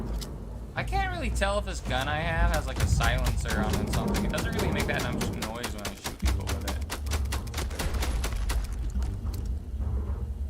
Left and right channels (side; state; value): both; identical; correlation 1.00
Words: I can't really tell if this gun I have has like a silencer on it or something. It doesn't really make that much noise when I shoot people with it.